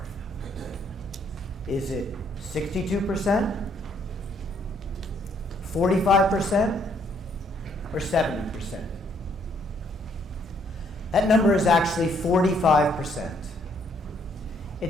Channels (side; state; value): both; normal; correlation 0.68